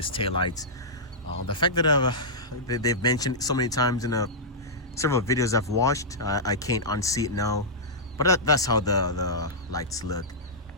taillights. The fact that they've mentioned it so many times in several videos I've watched, I can't unsee it now. But that's how the lights look.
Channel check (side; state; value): both; normal; correlation -0.12